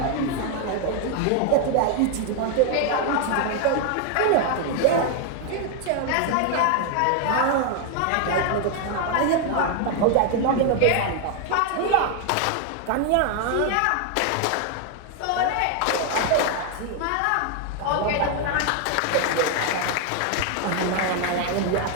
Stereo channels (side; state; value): both; different; correlation 0.00